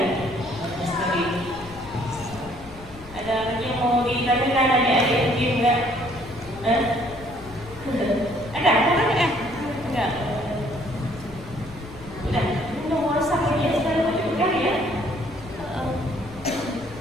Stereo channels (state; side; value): noise; left; rumble, 18 dB below the sound